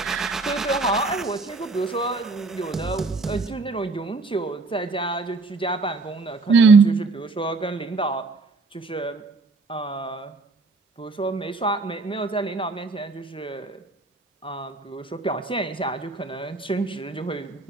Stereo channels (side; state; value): left; quieter; 3.7 dB